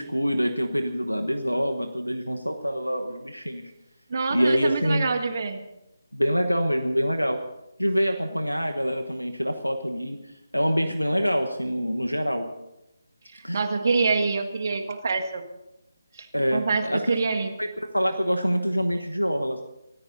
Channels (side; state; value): both; inverted; correlation -0.94